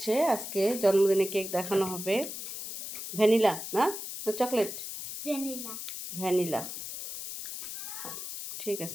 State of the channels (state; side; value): noise; left; hiss, 7 dB below the sound